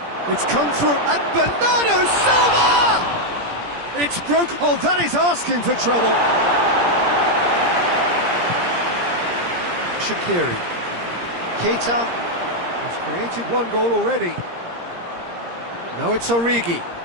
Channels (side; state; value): left; late; 17 ms